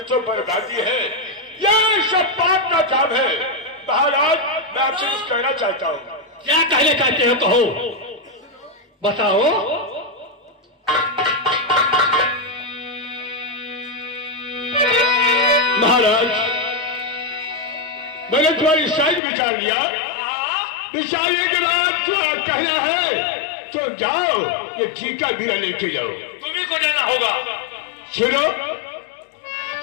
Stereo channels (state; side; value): drops out; right; at 19.2 s